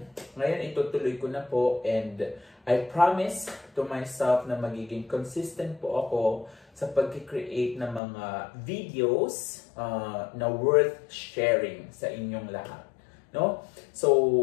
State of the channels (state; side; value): drops out; right; at 8.0 s